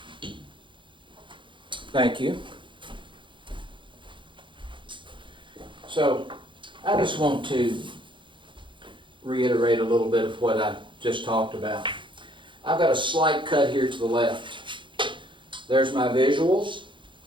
Thank you. So, I just want to reiterate a little bit of what I just talked about. I've got a slight cut here to the left. There's my visuals.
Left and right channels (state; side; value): late; left; 0.24 ms